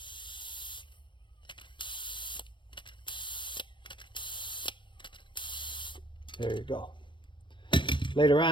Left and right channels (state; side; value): late; right; 0.23 ms